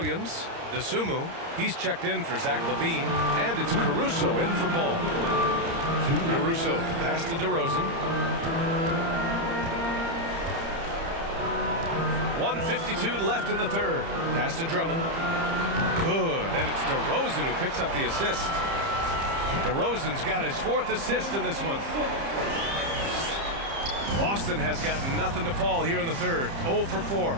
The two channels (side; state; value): left; late; 30 ms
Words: DeSumo, he's checked in for Zach LaVine. And it's Caruso in for Ball. Caruso, pass to DeRozan. 1:52 left in the third. Pass to Drummond. Good, and it's DeRozan who picks up the assist. DeRozan's got his 4th assist in this one. Boston has got nothing to fall here in the third. 0 for 4.